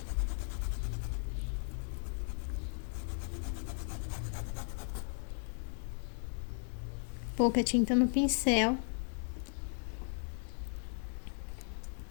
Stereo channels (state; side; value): silent; right; 53 dB below the other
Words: Pouca tinta no pincel.